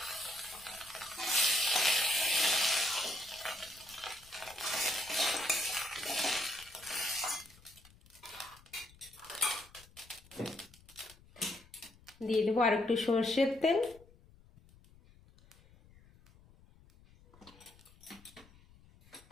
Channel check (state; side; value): noise; left; rumble, 25 dB below the sound